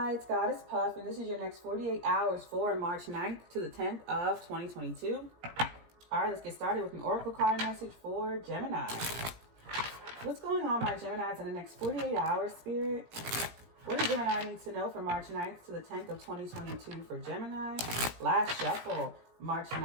it's GoddessPuff, and this is your next 48 hours for March 9th to the 10th of 2022. All right, let's get started with an oracle card message for Gemini. What's going on, my Geminis, in the next 48 hours, Spirit? What does Gemini need to know for March 9th to the 10th of 2022 for Gemini? Last shuffle, March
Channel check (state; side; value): late; left; 17 ms